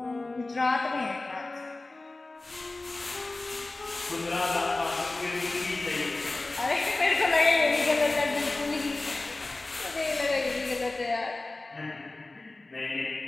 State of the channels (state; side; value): quieter; right; 3.1 dB